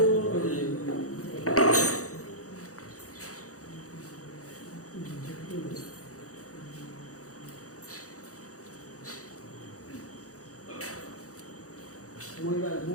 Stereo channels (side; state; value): right; late; 0.65 ms